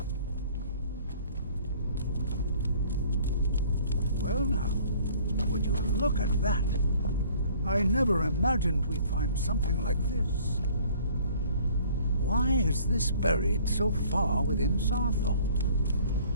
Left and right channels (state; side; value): inverted; both; correlation -0.54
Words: Well now, would you look at that? I never imagined we'd find something like this. Why is this buried so far within Saarthal?